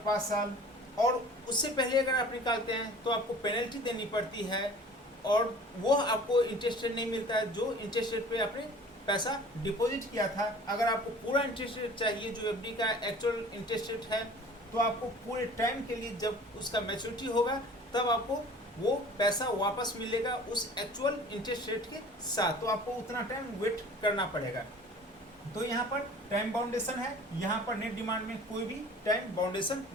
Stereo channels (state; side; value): normal; both; correlation 0.46